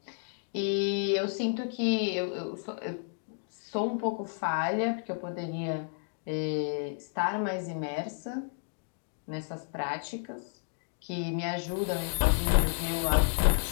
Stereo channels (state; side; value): silent; right; digital silence